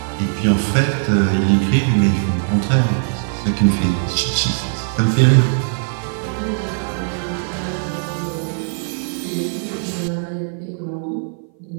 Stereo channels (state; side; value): silent; left; 58 dB below the other